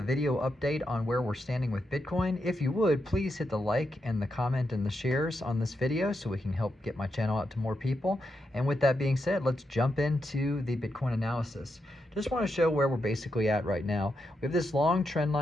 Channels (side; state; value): both; normal; correlation 0.84